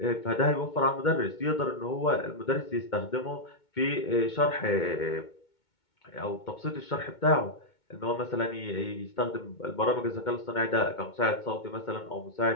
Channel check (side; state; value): right; late; 2.2 ms